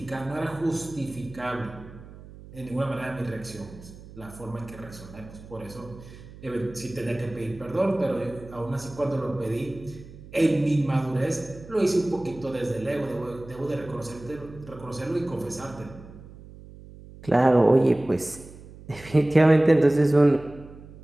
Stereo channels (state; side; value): noise; right; hum, 18 dB below the sound